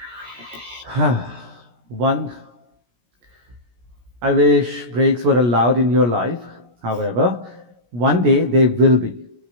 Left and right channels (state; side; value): late; left; 17 ms